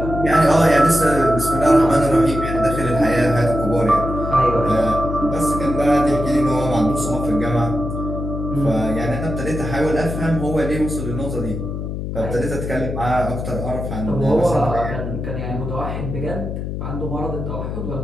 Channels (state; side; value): noise; left; hum, 5 dB below the sound